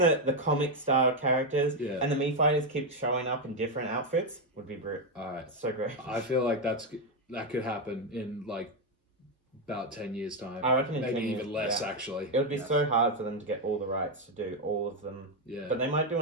comic style characters, Yeah. and the Mii Fighters keep showing up in different outfits, would be all right. so great. I feel like that could happen in like about 10 years time. I reckon in maybe 10 years, even less yeah. actually. It would be so hard for them to get all the rights to do all of them. Yeah. But they might do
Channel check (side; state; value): both; normal; correlation 0.05